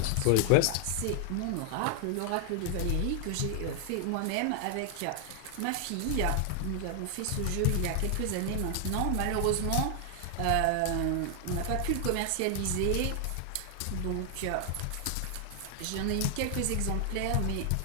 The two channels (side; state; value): both; different; correlation 0.00